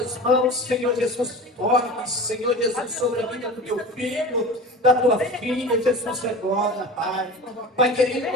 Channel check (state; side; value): normal; both; correlation 0.34